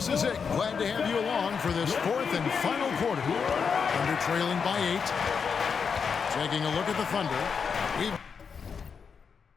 is it. Glad to have you along for this fourth and final quarter. Thunder trailing by 8. Taking a look at the Thunder. We've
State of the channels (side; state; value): right; quieter; 6.1 dB